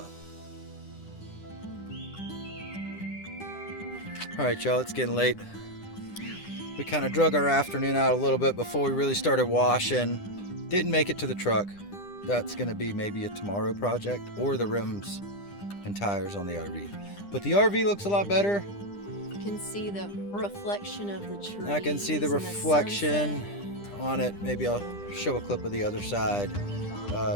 All right, y'all, it's getting late. We kind of drug our afternoon out a little bit before we really started washing. Didn't make it to the truck. That's gonna be maybe a tomorrow project, or the rims and tires on the RV. But the RV looks a lot better. You can see the reflection of the trees. I can see the reflection on it. Maybe I'll show a clip of the other side,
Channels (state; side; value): late; right; 10 ms